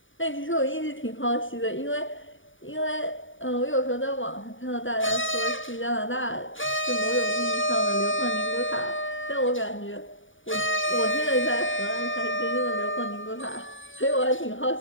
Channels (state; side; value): late; right; 0.57 ms